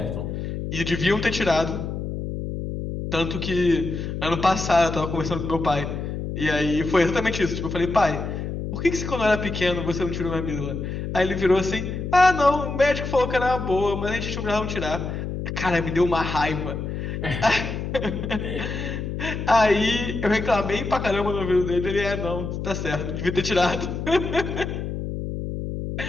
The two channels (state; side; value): noise; left; hum, 5 dB below the sound